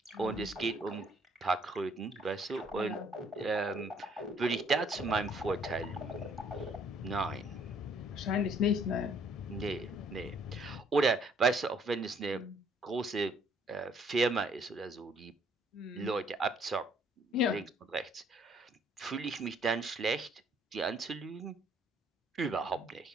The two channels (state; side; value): normal; both; correlation 0.63